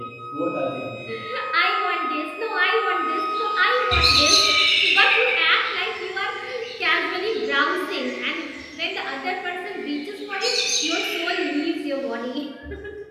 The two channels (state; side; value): identical; both; correlation 1.00